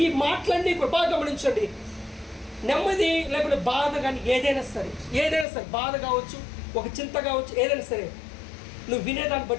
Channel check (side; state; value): right; drops out; at 5.5 s